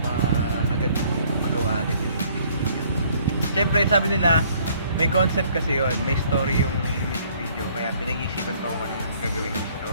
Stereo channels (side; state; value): both; inverted; correlation -0.61